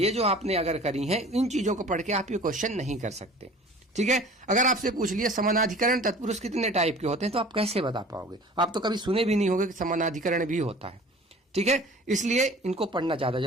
जो आपने अगर करी है, इन चीजों को पढ़ के आप ये क्वेश्चन नहीं कर सकते। ठीक है, अगर आपसे पूछ लिया समानाधिकरण तत्पुरुष कितने टाइप के होते हैं तो आप कैसे बता पाओगे? आप तो कभी सुने भी नहीं होंगे कि समानाधिकरण भी होता है। ठीक है, इसलिए इनको पढ़ना ज्यादा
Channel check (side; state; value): both; normal; correlation 0.45